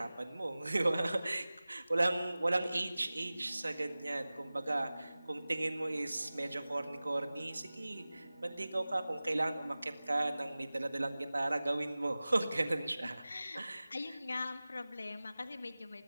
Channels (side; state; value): both; inverted; correlation -0.97